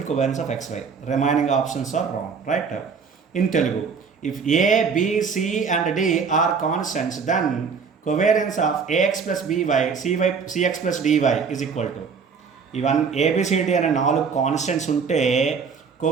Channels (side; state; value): left; quieter; 5.8 dB